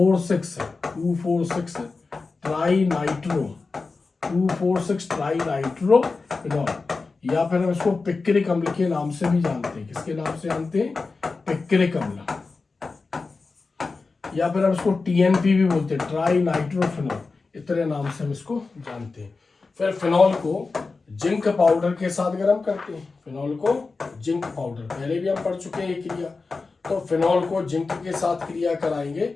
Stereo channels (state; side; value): quieter; right; 4.1 dB